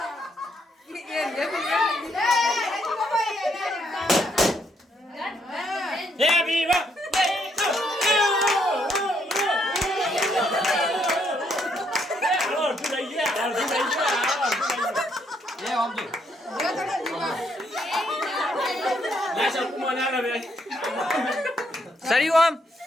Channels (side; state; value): both; normal; correlation 0.73